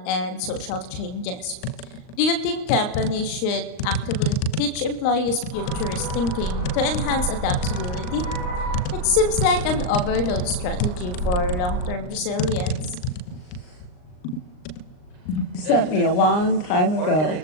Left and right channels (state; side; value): late; right; 39 ms